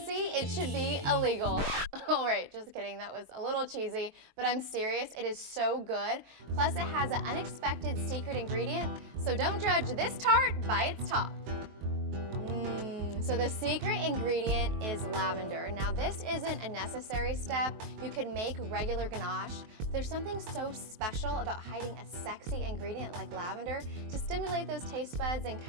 it should be illegal. All right, just kidding, that was a little cheesy, but I'm serious, it is so good. Plus it has an unexpected secret ingredient, so don't judge this tart by its top. So the secret ingredient is lavender. Now this isn't a necessary step. You could make regular ganache. There's something so special about hiding a sexy ingredient like lavender to stimulate those taste buds and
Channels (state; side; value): late; left; 22 ms